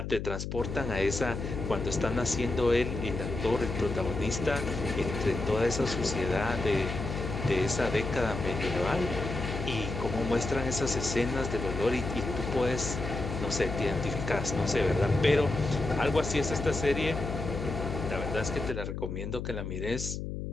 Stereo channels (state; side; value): noise; left; hum, 5 dB below the sound